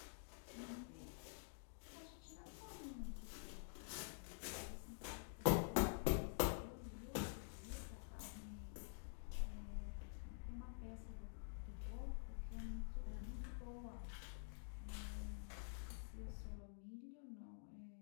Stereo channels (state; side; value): silent; right; digital silence